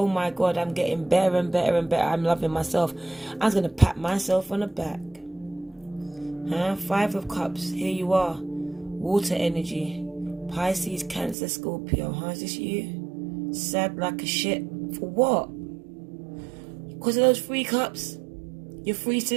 my God, I'm getting better and better and better. I'm loving myself. I was going to pat myself on the back. 5 of Cups, here you are. Water energy. Pisces, Cancer, Scorpio. Is this you? Sad like a shit. For what? Because of those 3 cups? Your 3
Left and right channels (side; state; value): left; drops out; at 11.4 s